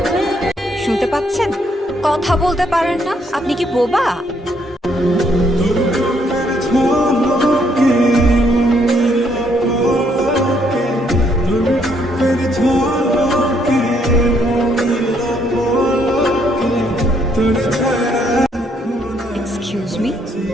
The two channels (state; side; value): normal; both; correlation 0.71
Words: শুনতে পাচ্ছেন? কথা বলতে পারেন না? আপনি কি বোবা? এক্সকিউজ মি,